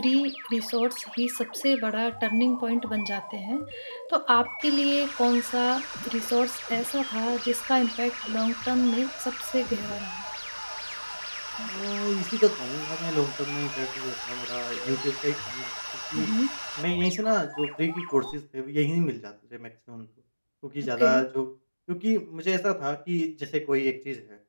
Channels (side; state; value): both; inverted; correlation -1.00